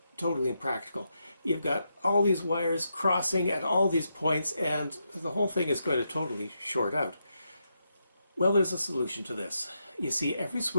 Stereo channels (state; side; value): inverted; both; correlation -0.83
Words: totally impractical. You've got all these wires crossing at all these points, and the whole thing is going to totally short out. Well, there's a solution to this. You see, every